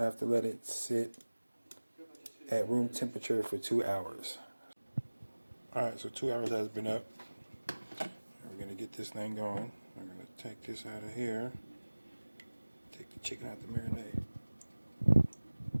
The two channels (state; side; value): inverted; both; correlation -1.00